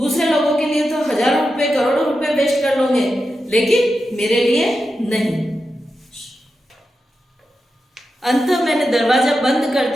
लोगों के लिए तो हजारों रुपए, करोड़ों रुपए वेस्ट कर लोगे, लेकिन मेरे लिए नहीं। अंत मैंने दरवाजा बंद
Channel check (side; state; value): both; normal; correlation 0.89